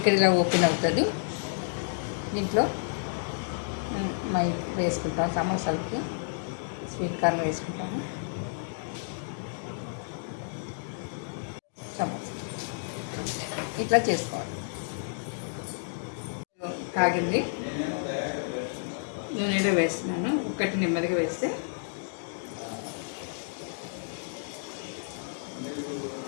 ఇక్కడ ఇలా ఓపెన్ అవుతుంది. దీంట్లో వేసుకుంటాం, సమోసాలకి స్వీట్ కార్న్ వేసుకుంటాము. సమోసా ఇట్లా చేసుకోవాలి. కాగింది, నూనెలో వేస్తున్నాను. ఒకటి నెమ్మదిగా వేస్తే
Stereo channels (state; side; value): silent; right; digital silence